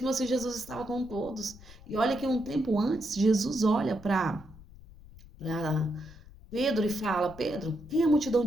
assim, Jesus estava com todos. E olha que um tempo antes, Jesus olha para Pedro e fala: Pedro, quem a multidão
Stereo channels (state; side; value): noise; left; rumble, 19 dB below the sound